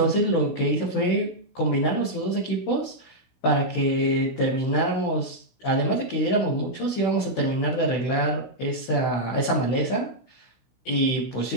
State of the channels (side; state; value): right; late; 16 ms